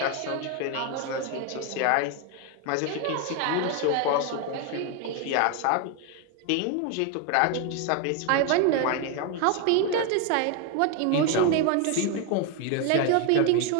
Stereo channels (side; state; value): both; different; correlation 0.01